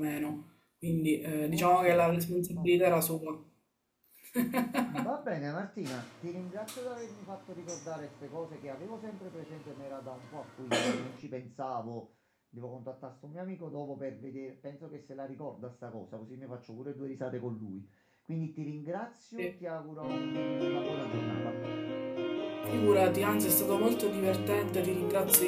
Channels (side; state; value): both; identical; correlation 1.00